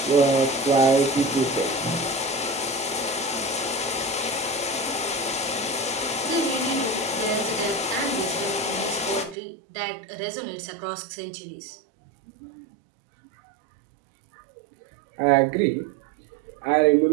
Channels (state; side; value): drops out; left; at 9.3 s